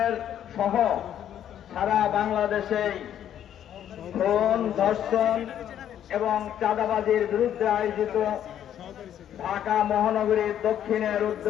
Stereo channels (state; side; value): quieter; right; 10.3 dB